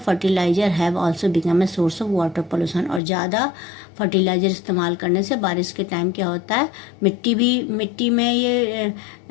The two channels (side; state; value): right; drops out; at 3.0 s